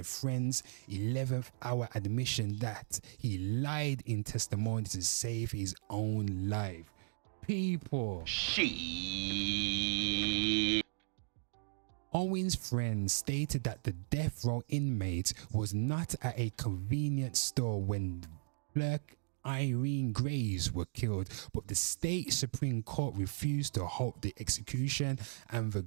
friend's 11th hour admission that he lied in testimony to save his own life. People. Owen's friend stated that the death row inmate was not at a convenience store when clerk Irene Graves were killed, but the state Supreme Court refused to halt the execution and the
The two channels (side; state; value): left; silent; digital silence